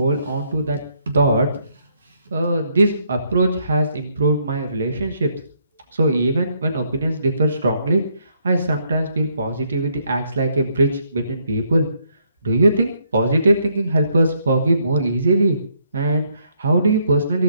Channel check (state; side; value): inverted; both; correlation -0.72